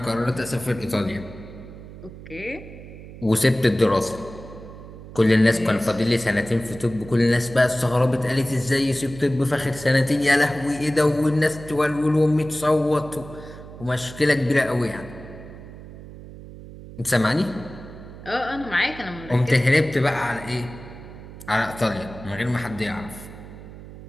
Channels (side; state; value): right; noise; hum, 15 dB below the sound